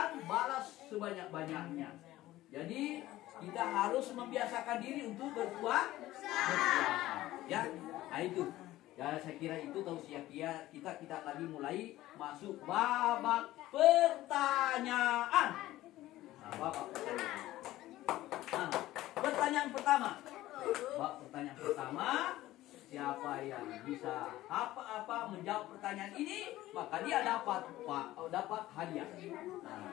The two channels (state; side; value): quieter; right; 15.9 dB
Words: balas sebanyak-banyaknya. Jadi kita harus membiasakan diri untuk berpuasa. Ya, nah itu. Ya, saya kira itu tausiah kita lagi mulai masuk babak pertanyaan. Nah, babak pertanyaan. Pertanyaan pertama, siapa yang bisa apa menjawab pertanyaan ini, maka dia dapat hadiah. Nah.